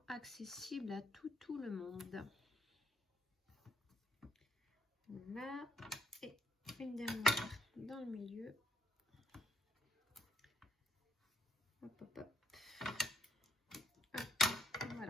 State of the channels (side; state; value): both; normal; correlation 0.67